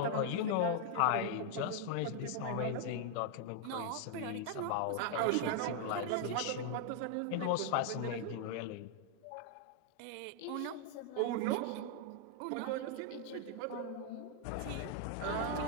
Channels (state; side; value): different; both; correlation 0.00